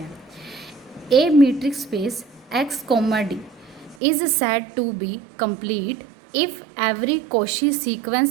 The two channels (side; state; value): left; drops out; at 4.0 s